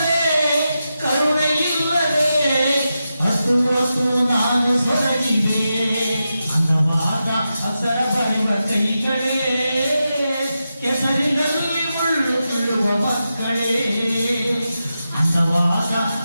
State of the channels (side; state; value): both; inverted; correlation -0.89